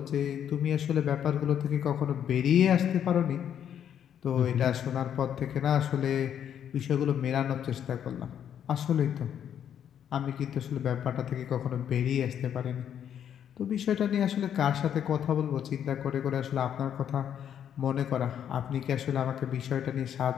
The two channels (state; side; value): quieter; right; 9.3 dB